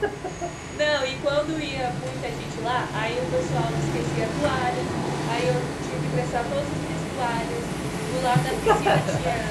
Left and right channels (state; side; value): identical; both; correlation 1.00